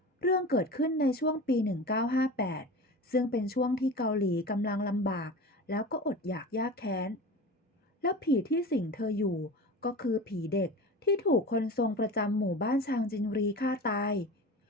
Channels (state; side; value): normal; both; correlation 0.32